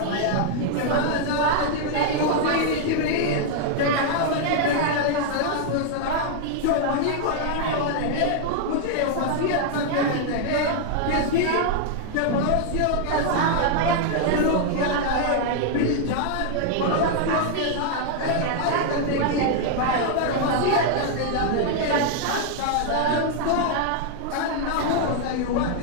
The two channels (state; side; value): different; both; correlation 0.00